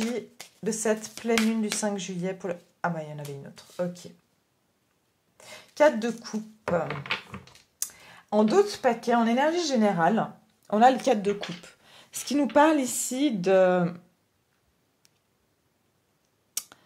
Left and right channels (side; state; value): both; identical; correlation 1.00